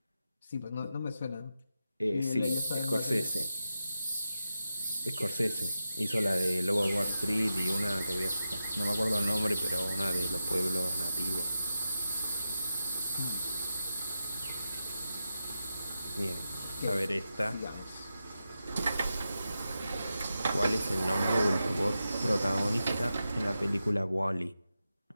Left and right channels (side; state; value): both; inverted; correlation -0.89